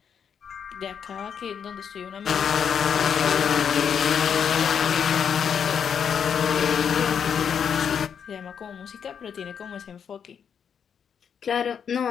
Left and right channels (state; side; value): quieter; right; 7.5 dB